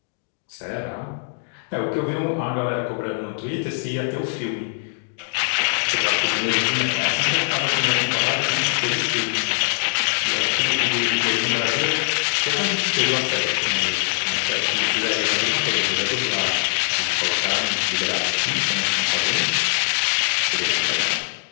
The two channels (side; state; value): right; silent; digital silence